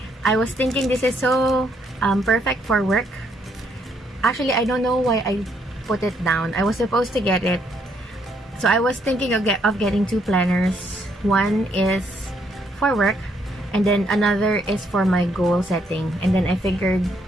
I was thinking this is so perfect for work. Actually, I don't know why I put it down. I was supposed to get it. So I was thinking of getting 2 planners. One is for work, and then another is for my goal setting. And then I figured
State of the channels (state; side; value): normal; both; correlation 0.72